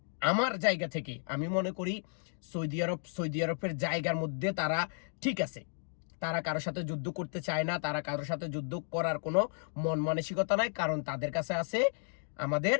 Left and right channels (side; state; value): right; silent; digital silence